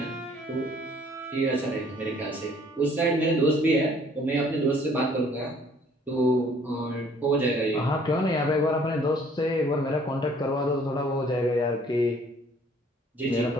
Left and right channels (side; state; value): both; normal; correlation 0.58